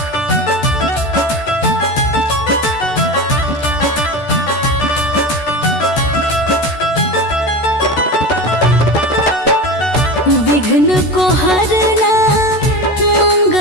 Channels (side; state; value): right; late; 13 ms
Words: विघ्न को हरना